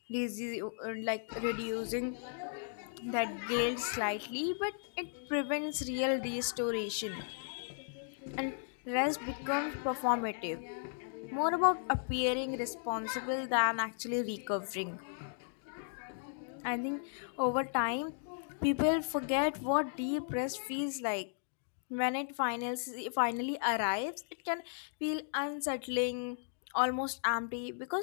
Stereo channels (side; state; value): right; silent; digital silence